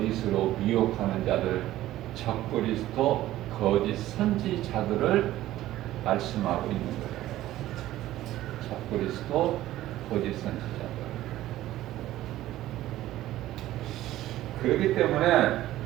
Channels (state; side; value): quieter; left; 14.7 dB